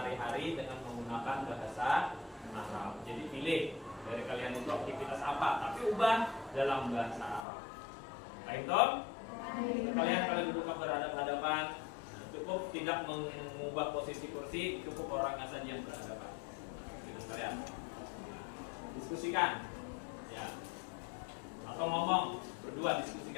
dengan menggunakan bahasa Arab. Jadi pilih dari kalian itu aktivitas apa, tapi ubah dalam bahasa Arab. Baik toh? Kalian duduk berhadapan-hadapan, cukup tidak mengubah posisi kursi, cukup orangnya saja yang berhadapan dengan kalian. Diskusikan, ya. Atau ngomong berdua,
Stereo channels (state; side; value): drops out; right; at 7.5 s